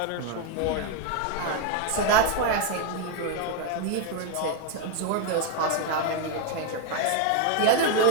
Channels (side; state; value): both; different; correlation 0.01